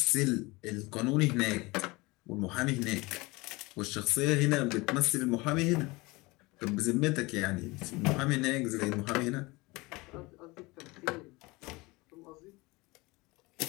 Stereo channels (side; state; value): right; quieter; 23.3 dB